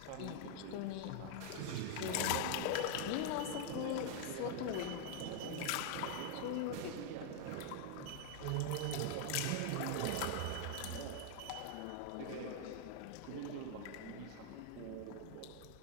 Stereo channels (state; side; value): different; both; correlation 0.00